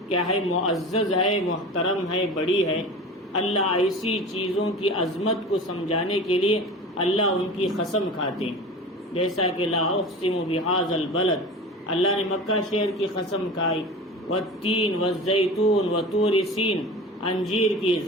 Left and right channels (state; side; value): normal; both; correlation 0.34